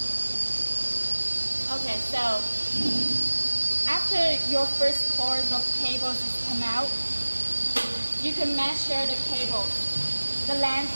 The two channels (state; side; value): inverted; both; correlation -1.00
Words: Okay, so after your first course of cables is come out, you can measure the cables, the